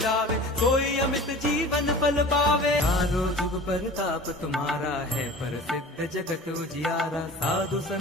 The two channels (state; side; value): normal; both; correlation 0.40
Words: सोई अमित जीवन फल पावे। चारों जुग परताप तुम्हारा है, प्रसिद्ध जगत उजियारा। साधु